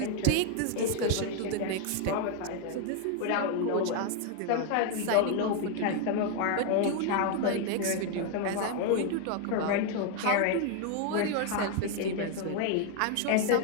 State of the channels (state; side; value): different; both; correlation 0.00